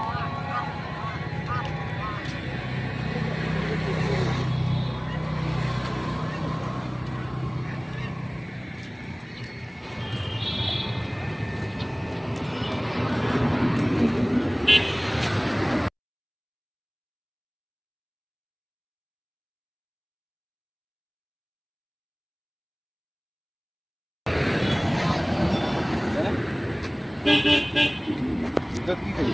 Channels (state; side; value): identical; both; correlation 1.00